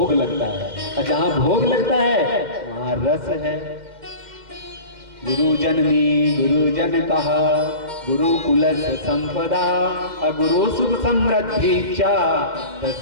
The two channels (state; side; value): late; left; 2.1 ms